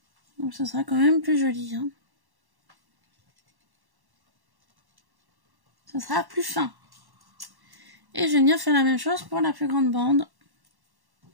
Donc ça sera quand même plus joli. Hein. Ça sera plus fin. Et je vais venir faire la même chose pour la plus grande bande.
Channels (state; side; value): late; left; 1.1 ms